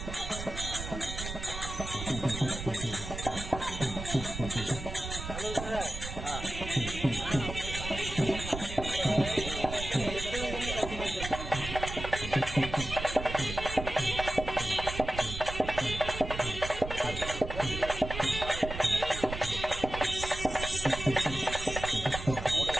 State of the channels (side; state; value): right; noise; rumble, 8 dB below the sound